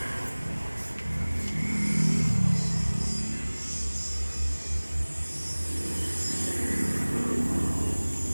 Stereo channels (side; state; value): both; inverted; correlation -1.00